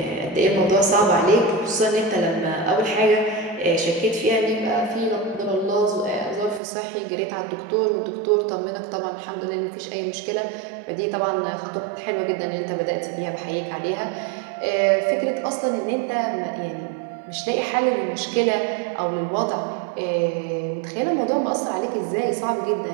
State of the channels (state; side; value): drops out; left; at 6.6 s